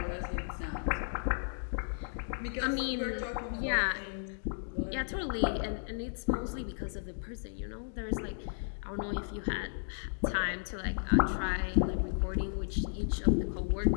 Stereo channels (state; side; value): silent; right; digital silence